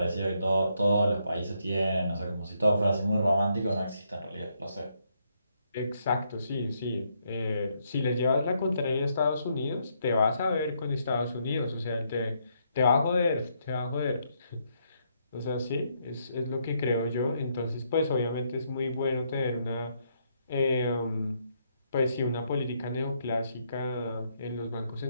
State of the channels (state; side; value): inverted; both; correlation -0.75